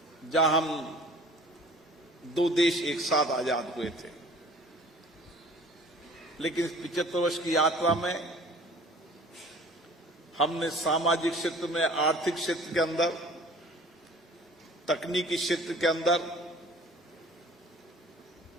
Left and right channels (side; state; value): both; normal; correlation 0.48